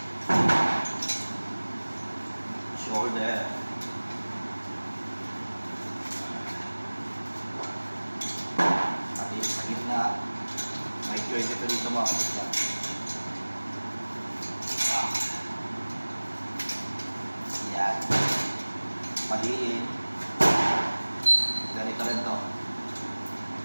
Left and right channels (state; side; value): inverted; both; correlation -1.00